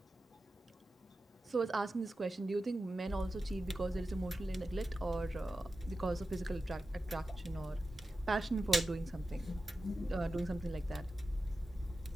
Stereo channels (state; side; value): normal; both; correlation 0.92